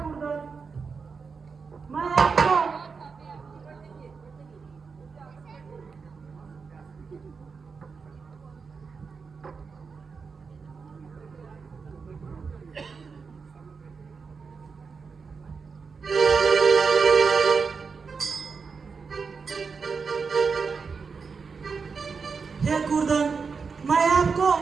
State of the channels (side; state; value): left; quieter; 5.2 dB